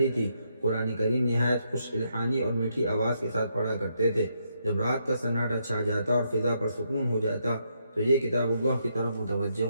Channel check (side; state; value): both; inverted; correlation -0.78